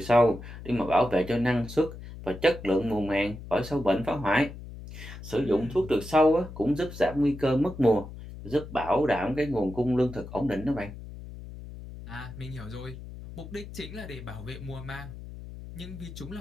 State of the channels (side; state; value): left; noise; hum, 13 dB below the sound